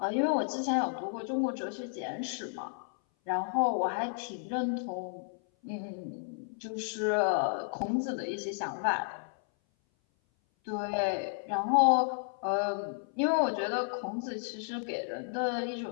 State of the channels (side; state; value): right; silent; 56 dB below the other